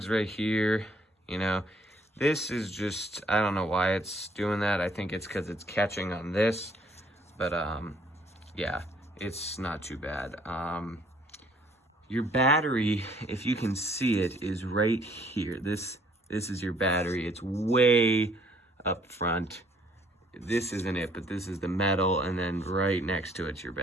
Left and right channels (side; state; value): both; normal; correlation 0.62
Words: right here. You know, this is just, I don't know why it's doing that. I think it's because it's catching on this, but yeah, it's not too bad. Your battery, if you can see it, is right here. This is your battery. It's way up front. This isn't it, but this is the metal, and then right next to it's your